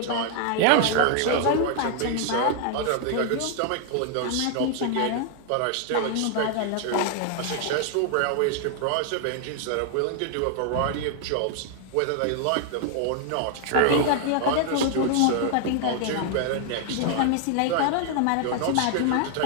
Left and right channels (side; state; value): both; different; correlation 0.00